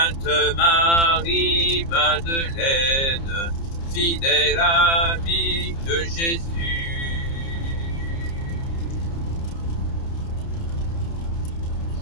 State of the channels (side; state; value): right; late; 30 ms